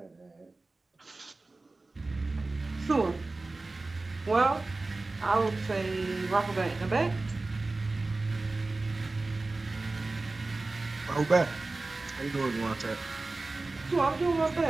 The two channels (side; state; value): left; quieter; 3.3 dB